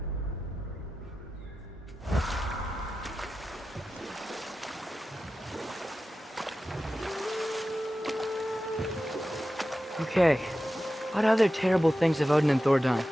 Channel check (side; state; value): both; normal; correlation 0.93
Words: Okay, what other terrible things have Odin and Thor done?